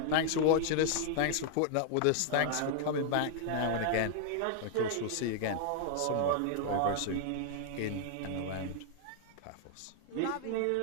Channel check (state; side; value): different; both; correlation -0.01